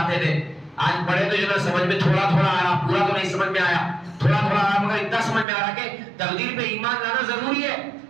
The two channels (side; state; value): left; drops out; at 5.5 s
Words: تھے، آج پڑھے تو جو نا سمجھ میں تھوڑا تھوڑا آیا، پورا تو نہیں سمجھ میں آیا، تھوڑا تھوڑا آیا، مگر اتنا سمجھ میں آ رہا کہ تقدیر پہ ایمان لانا ضروری ہے،